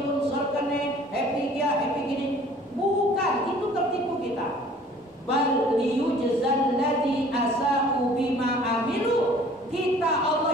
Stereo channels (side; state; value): both; normal; correlation 0.52